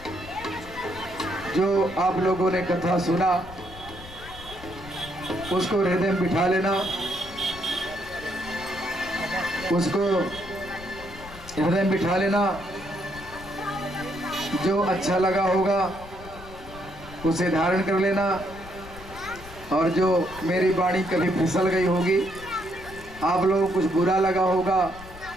जो आप लोगों ने कथा सुना उसको हृदय में बिठा लेना, उसको हृदय में बिठा लेना। जो अच्छा लगा होगा उसे धारण कर लेना, और जो मेरी वाणी कभी फिसल गई होगी, आप लोगों को कुछ बुरा लगा होगा,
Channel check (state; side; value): noise; left; rumble, 17 dB below the sound